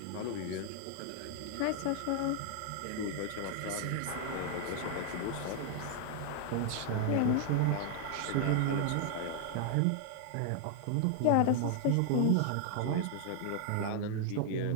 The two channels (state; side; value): different; both; correlation 0.00